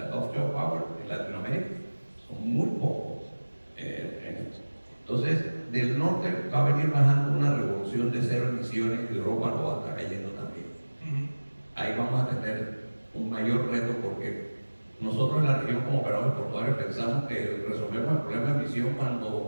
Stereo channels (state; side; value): inverted; both; correlation -1.00